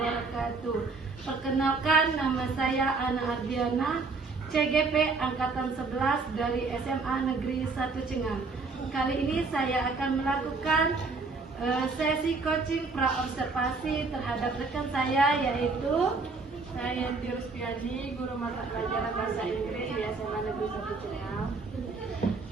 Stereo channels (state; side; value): quieter; left; 4.1 dB